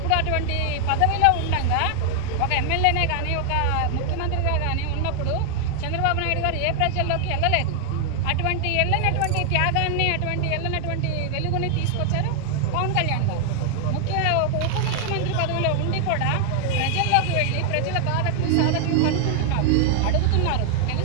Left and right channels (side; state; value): both; different; correlation 0.00